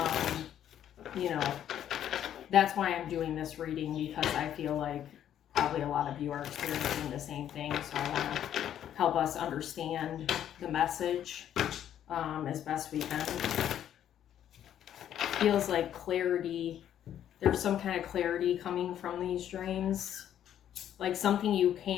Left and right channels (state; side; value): quieter; right; 10.5 dB